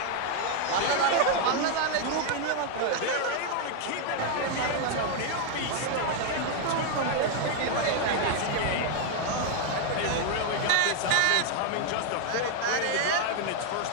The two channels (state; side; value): different; both; correlation 0.00